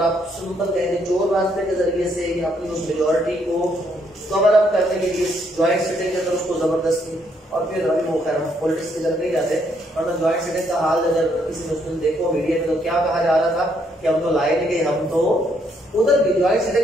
आप सिंपल कहें चोर रास्ते के जरिए से अपनी उस मेजोरिटी को कवर अप करने के लिए ज्वाइंट सिटिंग के अंदर उसको जबरदस्ती, और फिर अभी वो खैर पॉलिटिक्स की तरफ नहीं जाते, वरना ज्वाइंट सिटिंग का हाल अगर किसी ने उसमें देखो मीडिया में तो क्या कहा जा रहा था कि हम तो लाए नहीं गए, हम तो उधर भी ज्वाइंट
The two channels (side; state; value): both; normal; correlation 0.71